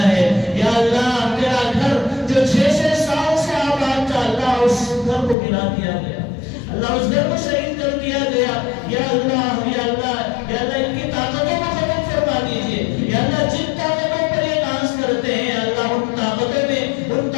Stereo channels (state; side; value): drops out; right; at 5.4 s